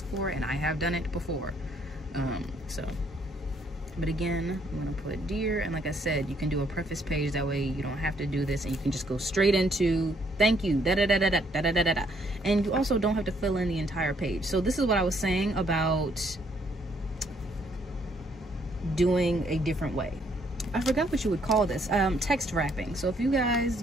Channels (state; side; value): normal; both; correlation 0.68